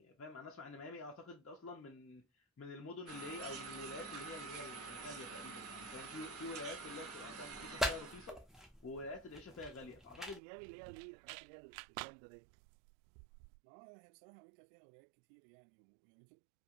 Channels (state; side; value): drops out; left; at 10.4 s